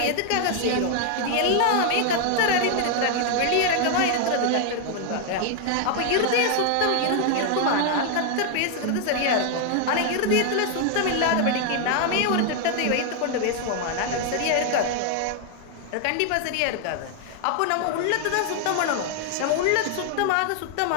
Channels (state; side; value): different; both; correlation 0.00